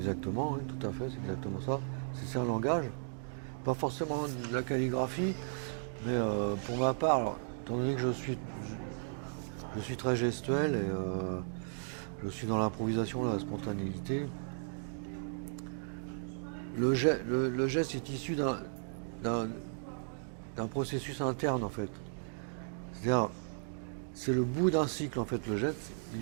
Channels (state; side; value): silent; left; digital silence